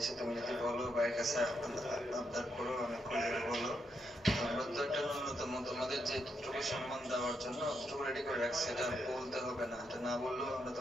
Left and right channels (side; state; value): both; normal; correlation 0.80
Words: তুমি যদি বলো ভাইয়ের কাছে আবদার করো, আমি খুলে বলো, আমরা তো একটা ন্যূনতম তোমাদের যে যতটুকু সম্মান দেওয়ার জন্য অতটুকু রেডি করে রাখছি, এটা বলতে হবে না, এটা না বললেও আমরা